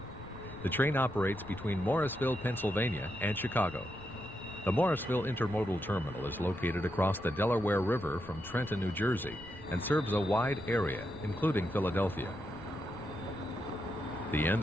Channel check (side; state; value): left; noise; rumble, 18 dB below the sound